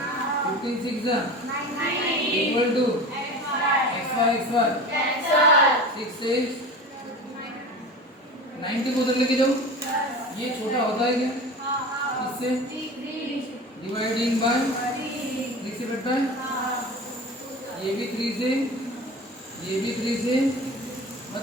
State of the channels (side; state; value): both; normal; correlation 0.33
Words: 15 6 इक्वल टू xy 6 से 90 को उधर लेके जाओ, ये छोटा होता है क्या इससे, डिवाइडिंग बाय 3 से कटता है, ये भी 3 से, ये भी 3 से,